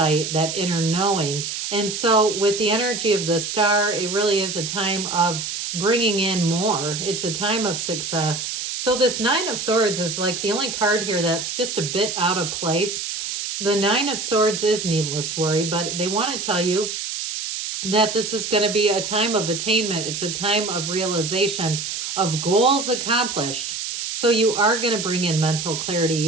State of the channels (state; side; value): noise; right; hiss, 4 dB below the sound